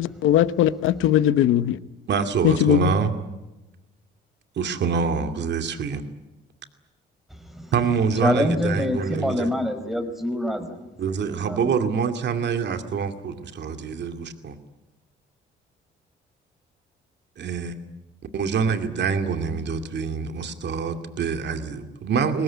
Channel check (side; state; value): both; normal; correlation 0.33